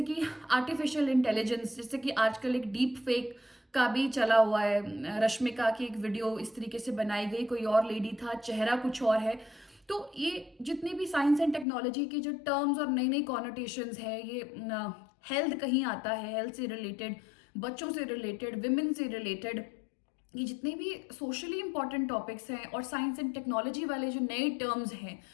कि आर्टिफिशियल इंटेलिजेंस, जैसे कि आजकल एक डीप फेक का भी चला हुआ है, रश्मिका की एक वीडियो इस तरीके से बनाई गई, कोई और लेडी था, चेहरा कुछ और है। तो ये जितनी भी साइंस एंड टेक्नोलॉजी के जो टर्म्स और नई नई कॉनोटेशंस है, ये हेल्थ कहीं आता है, हेल्थ से रिलेटेड, बच्चों से रिलेटेड, विमेन से रिलेटेड, ये जितने भी सोशली इंपॉर्टेंट टॉपिक्स हैं और साइंस एंड टेक्नोलॉजी वाले जो नए टर्म्स हैं,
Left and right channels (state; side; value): drops out; right; at 11.7 s